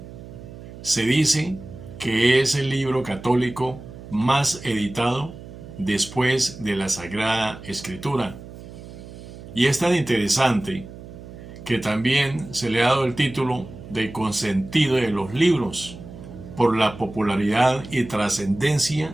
Se dice que es el libro católico más editado después de la Sagrada Escritura. Y es tan interesante que también se le ha dado el título de consentido de los libros por la popularidad y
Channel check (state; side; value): noise; right; hum, 15 dB below the sound